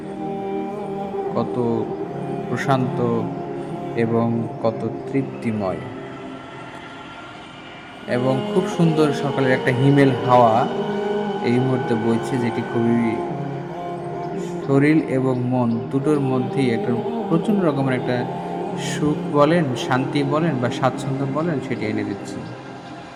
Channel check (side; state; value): both; identical; correlation 1.00